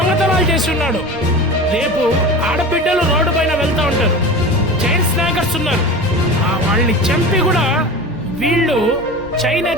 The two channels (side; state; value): both; normal; correlation 0.32